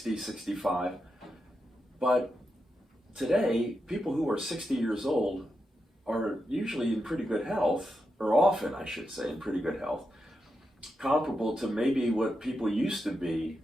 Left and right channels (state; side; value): normal; both; correlation 0.86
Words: 65. But today, people who are 60 years old are usually in pretty good health, or often, I should say, in pretty good health, comparable to maybe what people used to be